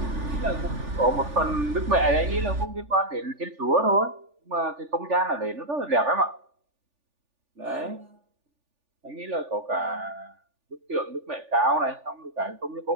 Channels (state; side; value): late; left; 3.4 ms